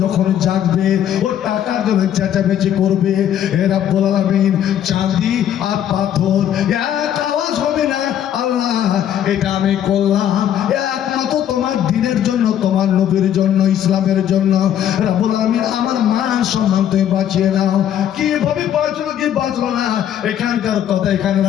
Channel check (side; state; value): right; quieter; 10.3 dB